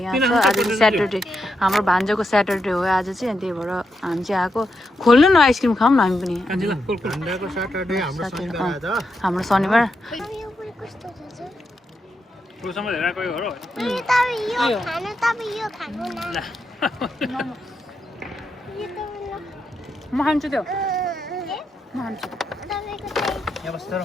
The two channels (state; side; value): normal; both; correlation 0.84